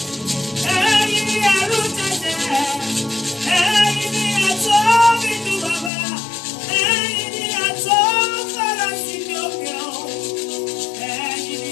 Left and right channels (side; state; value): right; drops out; at 5.9 s